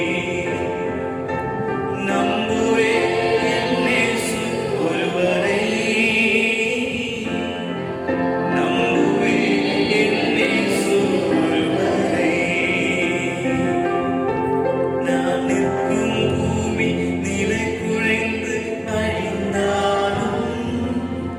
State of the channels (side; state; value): both; identical; correlation 1.00